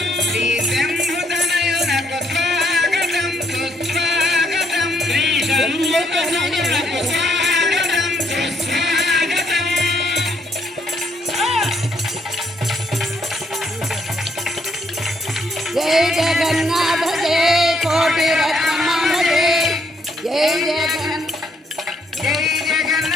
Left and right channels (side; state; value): both; normal; correlation 0.72